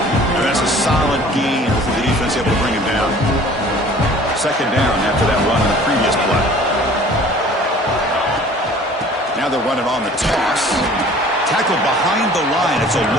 And that's a solid gain for the defense able to bring him down. 2nd down after that run on the previous play. Now they're running on the toss. Tackled behind the line. It's a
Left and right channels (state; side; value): normal; both; correlation 0.49